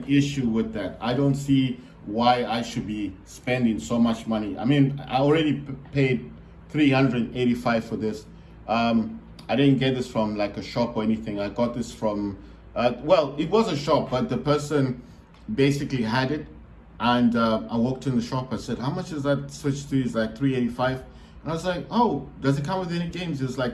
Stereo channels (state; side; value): identical; both; correlation 1.00